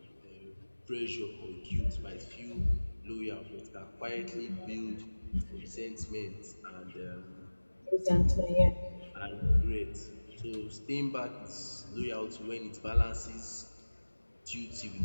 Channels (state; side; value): inverted; both; correlation -1.00